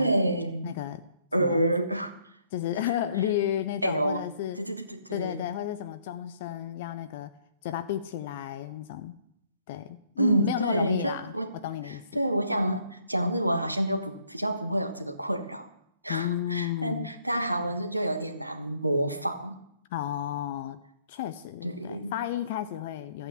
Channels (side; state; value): both; inverted; correlation -0.66